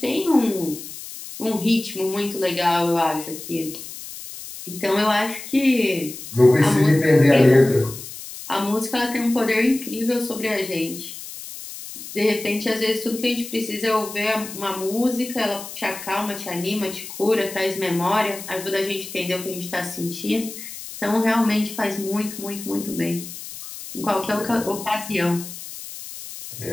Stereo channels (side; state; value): left; noise; hiss, 12 dB below the sound